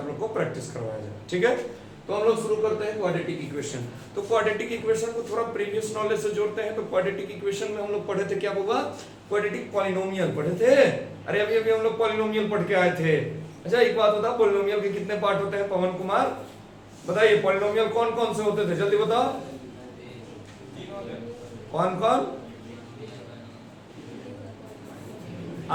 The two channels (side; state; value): both; identical; correlation 1.00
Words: लोग को प्रैक्टिस करवाया जाए। ठीक है, तो हम लोग शुरू करते हैं क्वाड्रेटिक इक्वेशन। तो क्वाड्रेटिक इक्वेशन को थोड़ा प्रीवियस नॉलेज से जोड़ते हैं। तो क्वाड्रेटिक इक्वेशन में हम लोग पढ़े थे, क्या होगा, क्वाड्रेटिक पॉलिनोमियल पढ़े थे। अरे अभी हम लोग पॉलिनोमियल पढ़ के आए थे। अच्छा, एक बात बता, पॉलिनोमियल के कितने पार्ट होते हैं? पवन कुमार बताइए, पॉलिनोमियल कौन कौन से होते थे, जल्दी बताओ। कौन कौन?